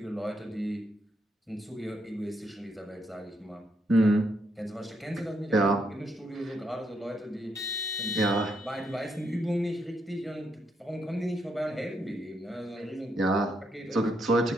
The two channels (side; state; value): both; normal; correlation 0.77